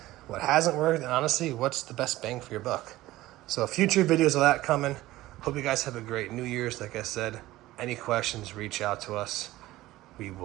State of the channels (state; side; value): quieter; left; 16.9 dB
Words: what hasn't worked, and honestly, what's the best bang for your buck. So future videos of that coming. Hope you guys have a great New Year's. Like I said, any questions, reach out to us. We